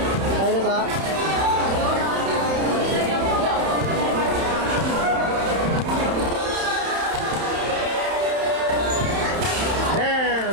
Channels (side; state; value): left; late; 31 ms